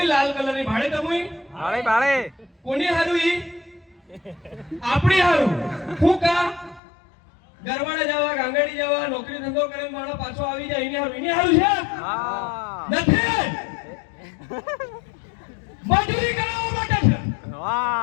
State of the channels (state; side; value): drops out; right; at 6.8 s